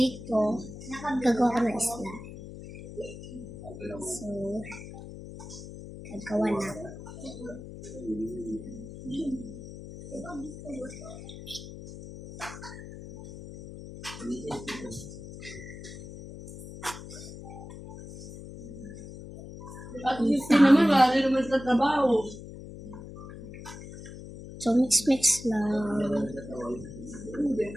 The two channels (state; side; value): noise; left; hum, 13 dB below the sound